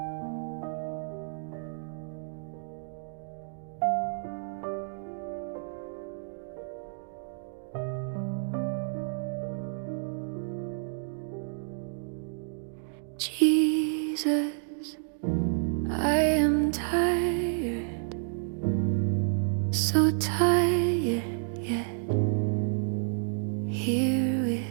Jesus, I am tired, so tired, yet here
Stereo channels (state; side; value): silent; left; digital silence